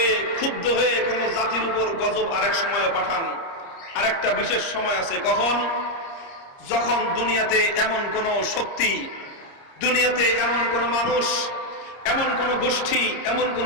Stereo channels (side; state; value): right; late; 30 ms